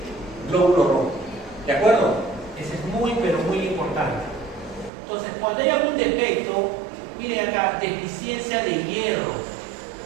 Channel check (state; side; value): drops out; left; at 4.9 s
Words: glóbulo rojo. ¿De acuerdo? Eso es muy, pero muy importante. Entonces, cuando hay algún defecto, miren acá, deficiencia de hierro.